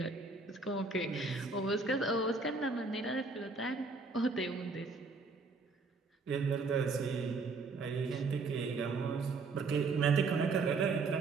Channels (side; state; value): left; quieter; 4.0 dB